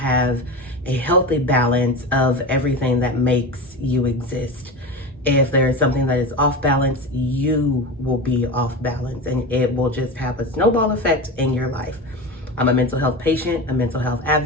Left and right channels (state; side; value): normal; both; correlation 0.25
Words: a healthy balance of everything that makes you exist. If there is something that is off balance, you will be off balance and it will just have a snowball effect in your life. I'm a mental health patient, a mental health